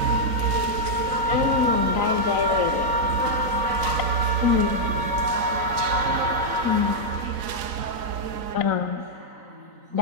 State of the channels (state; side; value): late; left; 4.0 ms